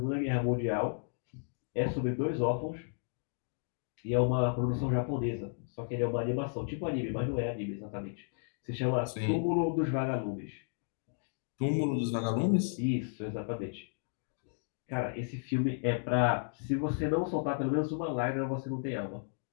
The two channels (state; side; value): silent; right; digital silence